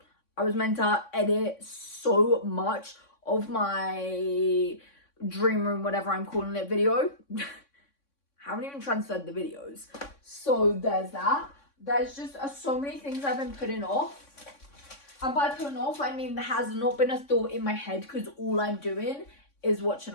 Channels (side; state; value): right; late; 3.6 ms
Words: I was meant to edit so much of my dream room, whatever I'm calling it, video. Haven't even transferred the videos. So there's that. There's just so many things I've been putting off. And by putting off, I mean there has not been a thought in my head because all I'm doing is watching